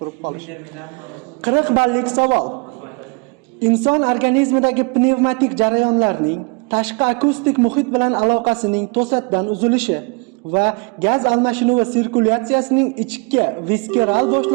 qolishi. 40 ballik savol. Inson organizmidagi pnevmatik jarayonlarning tashqi akustik muhit bilan aloqasining to'satdan uzilishi va gaz almashinuvi sirkulyatsiyasining ichki viskeral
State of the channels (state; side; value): quieter; left; 32.3 dB